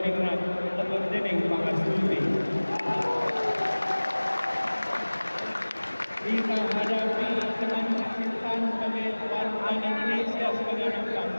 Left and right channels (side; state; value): both; inverted; correlation -1.00